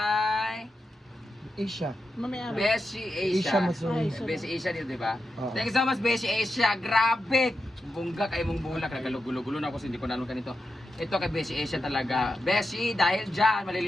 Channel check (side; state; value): both; normal; correlation 0.88